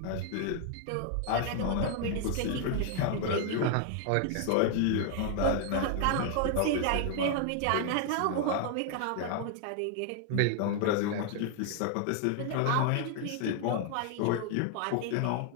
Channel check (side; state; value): both; different; correlation 0.00